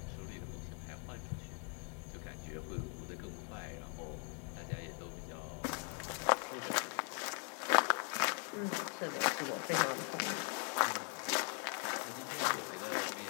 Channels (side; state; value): right; quieter; 40.0 dB